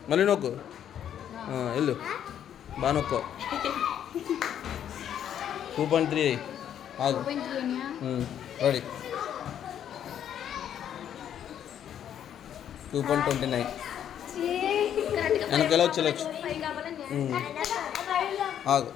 మళ్ళీ నొక్కు వెళ్ళు బాగా నొక్కు 2.3 ఆగు రెడీ 2.29 వెనక ఎలా వచ్చి ఆగు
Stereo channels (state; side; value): quieter; right; 9.7 dB